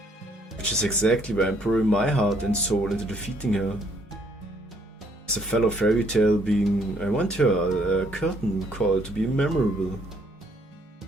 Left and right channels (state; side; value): normal; both; correlation 0.66